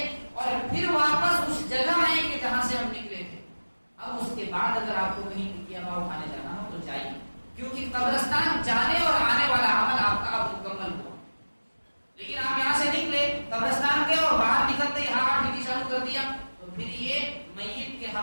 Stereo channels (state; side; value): inverted; both; correlation -1.00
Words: اور پھر واپس اس جگہ آئیں گے جہاں سے ہم نکلے تھے. اب اس کے بعد اگر آپ کو کہیں ٹکیا ہوا اٹھانے جانا ہو تو جائیے, کیونکہ قبرستان جانے اور آنے والا عمل آپ کا اب مکمل ہوا. لیکن آپ یہاں سے نکلے, قبرستان گئے اور باہر نکلتے ہی ہاتھ ٹھیک شروع کر دیا, تو پھر یہ میت کے